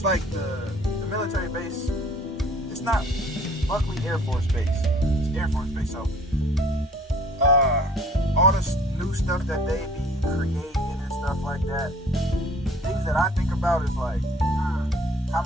like the military base, it's not Buckley Air Force Base, it's Air Force Base. So all this new stuff that they be creating and stuff like that, things that I think about is like, how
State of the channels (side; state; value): both; normal; correlation 0.53